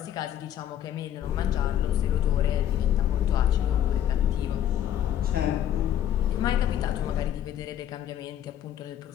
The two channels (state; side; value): quieter; right; 10.7 dB